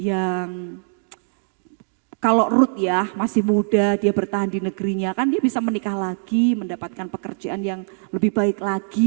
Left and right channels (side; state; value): left; silent; digital silence